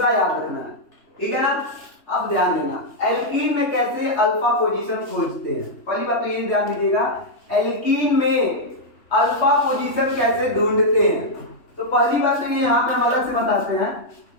याद रखना है। ठीक है ना? अब ध्यान देना, एल्कीन में कैसे अल्फा पोजीशन खोजते हैं। पहली बात तो ये ध्यान दीजिएगा, एल्कीन में अल्फा पोजीशन कैसे ढूंढते हैं। तो पहली बात तो ये यहाँ पे हम अलग से बताते हैं,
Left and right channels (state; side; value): late; right; 3.2 ms